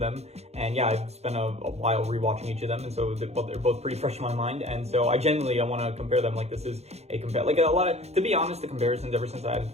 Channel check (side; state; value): left; late; 0.31 ms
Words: And yeah, I've spent a while rewatching each of them, and so they're both pretty fresh in my mind. And so I want to compare them. Like, this is a compare, like a lot of, to be honest, the comparisons ever since I added